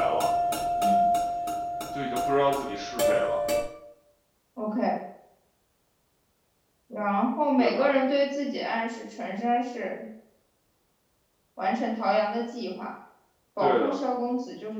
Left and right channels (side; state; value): both; identical; correlation 1.00